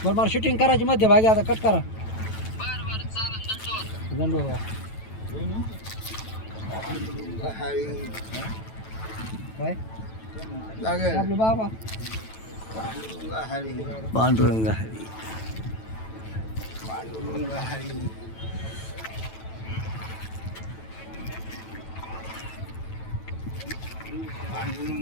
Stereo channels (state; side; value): late; right; 9.1 ms